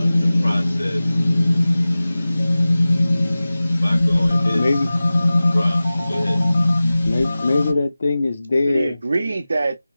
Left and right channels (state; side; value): inverted; both; correlation -0.97